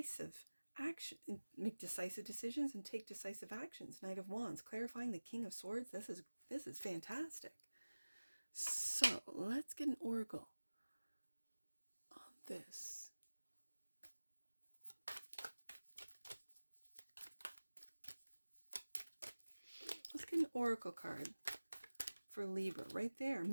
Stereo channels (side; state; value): both; inverted; correlation -1.00